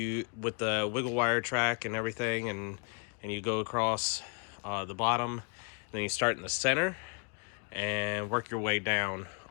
with the wiggle wire track and everything, and you go across the bottom, and then you start in the center and work your way down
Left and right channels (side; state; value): right; quieter; 37.5 dB